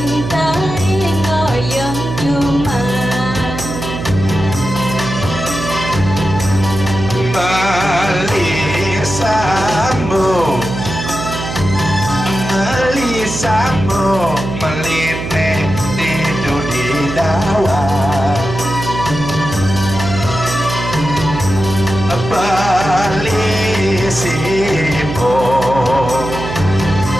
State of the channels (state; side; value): noise; right; hum, 7 dB below the sound